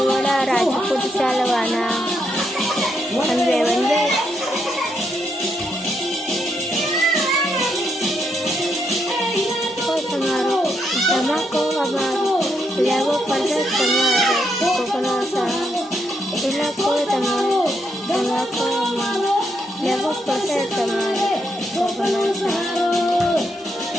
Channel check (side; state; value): both; normal; correlation 0.79